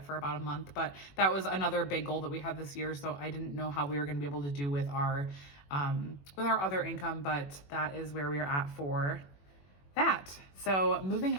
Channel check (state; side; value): late; right; 21 ms